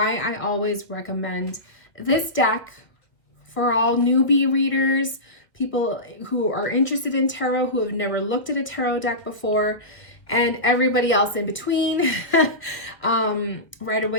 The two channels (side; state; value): right; late; 1.4 ms